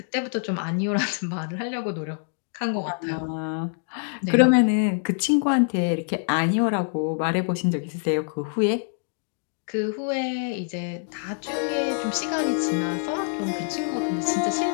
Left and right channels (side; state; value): right; silent; 61 dB below the other